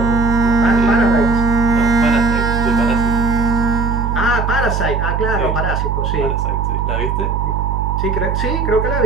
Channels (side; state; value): right; noise; hum, 1 dB below the sound